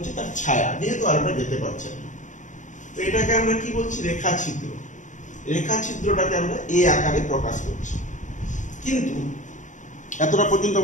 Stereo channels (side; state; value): right; late; 0.36 ms